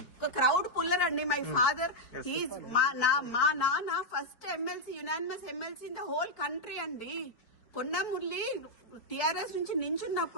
ఒక క్రౌడ్ పుల్లర్ అండి. మై ఫాదర్ మా నాన్న first MLC, unanimous MLC in the whole country అండి. కొండా మురళి టిఆర్ఎస్ నుంచి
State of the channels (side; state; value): right; late; 4.5 ms